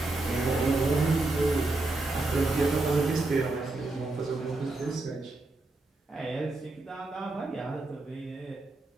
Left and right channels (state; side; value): quieter; left; 3.0 dB